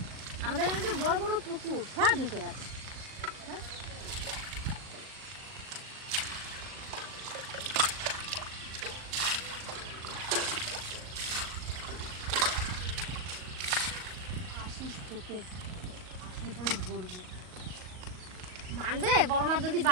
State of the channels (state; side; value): late; left; 38 ms